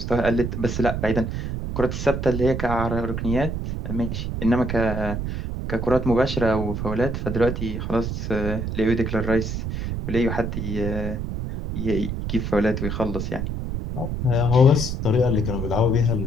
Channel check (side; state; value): right; noise; rumble, 3 dB below the sound